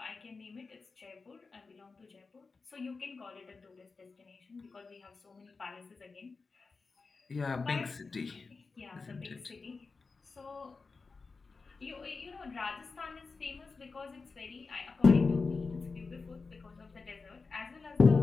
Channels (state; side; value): quieter; right; 4.3 dB